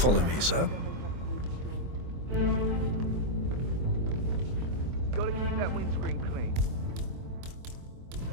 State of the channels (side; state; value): left; late; 24 ms